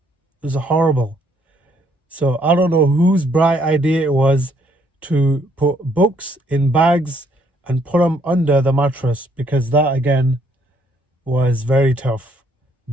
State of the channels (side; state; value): both; normal; correlation 0.68